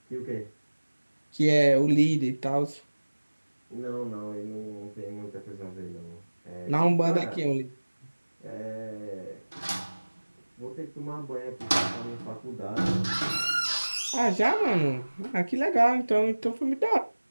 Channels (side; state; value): both; inverted; correlation -1.00